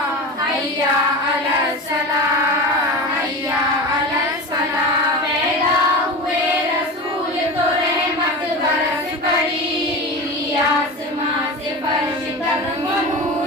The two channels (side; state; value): both; normal; correlation 0.27